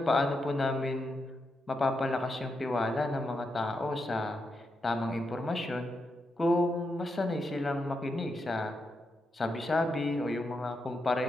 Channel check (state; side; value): normal; both; correlation 0.84